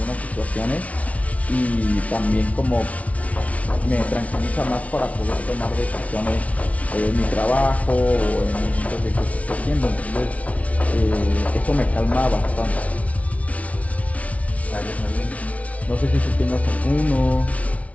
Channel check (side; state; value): right; late; 0.066 ms